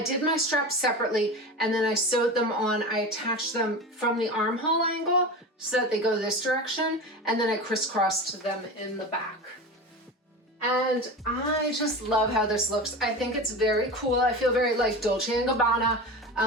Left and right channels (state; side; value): normal; both; correlation 0.28